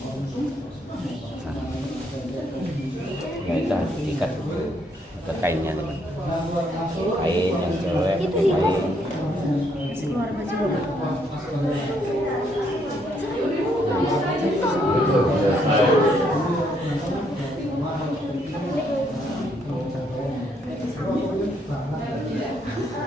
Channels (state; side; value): normal; both; correlation 0.72